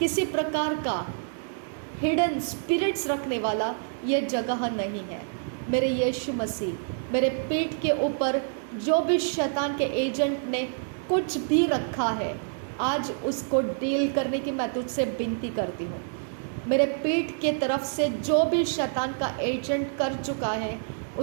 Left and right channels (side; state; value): left; silent; 60 dB below the other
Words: प्रकार का हिडन स्पिरिट्स रखने वाला यह जगह नहीं है। मेरे यीशु मसीह, मेरे पेट के ऊपर जो भी शैतान के एजेंट ने कुछ भी रखा है, आज उसको डील करने की मैं तुझसे विनती करती हूँ। मेरे पेट के तरफ से जो भी शैतान का एजेंट कर चुका है,